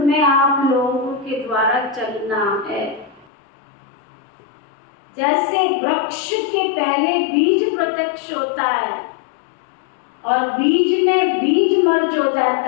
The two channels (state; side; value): drops out; right; at 3.2 s